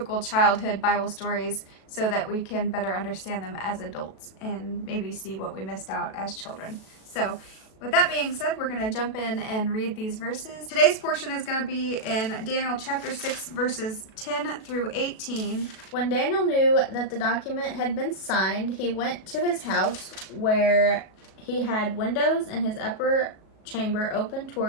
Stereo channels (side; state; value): right; late; 37 ms